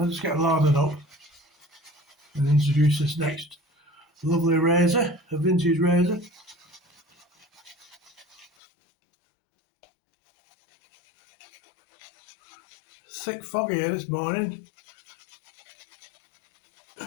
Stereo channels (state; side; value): drops out; right; at 8.5 s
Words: just get loaded up and introduce this next lovely razor, a vintage razor. Thick fog here this morning.